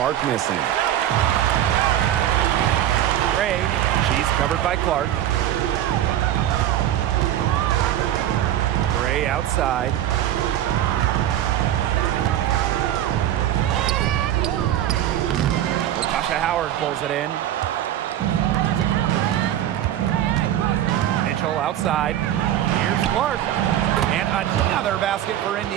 missing. Gray. She's covered by Clark. Gray outside. Tasha Howard pulls it in. Mitchell outside. Here's Clark. And another basket for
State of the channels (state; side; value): quieter; left; 11.9 dB